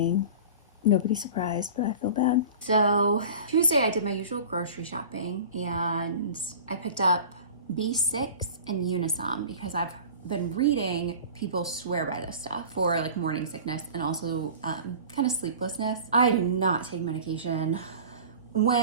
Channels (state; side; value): inverted; both; correlation -0.38